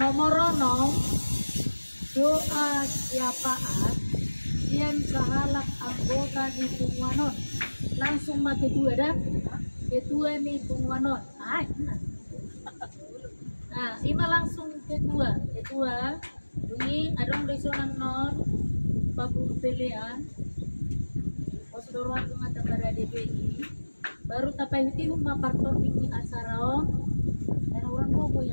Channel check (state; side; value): inverted; both; correlation -1.00